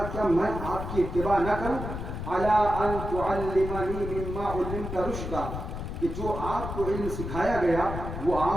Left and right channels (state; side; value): noise; left; rumble, 6 dB below the sound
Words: کیا میں آپ کی اتباع نہ کروں؟ الا ان تعلمنی مما علمت رشدا، کہ جو آپ کو علم سکھایا گیا وہ